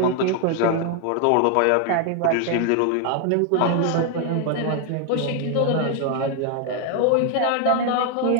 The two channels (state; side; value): different; both; correlation 0.00